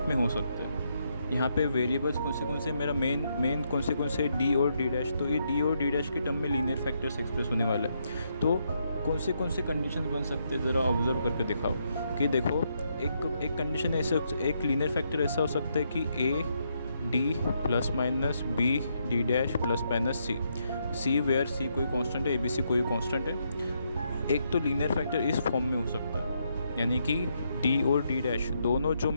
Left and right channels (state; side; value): inverted; both; correlation -0.77